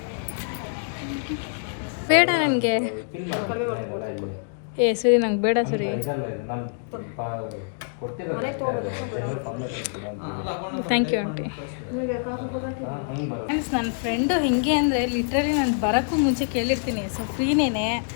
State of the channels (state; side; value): silent; right; digital silence